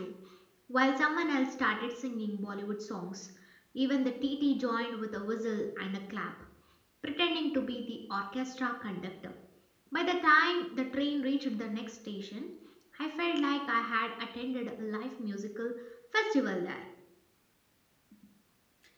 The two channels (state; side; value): identical; both; correlation 1.00